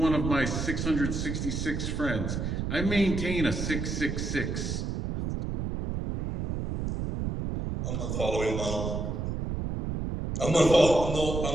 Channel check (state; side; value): noise; right; rumble, 3 dB below the sound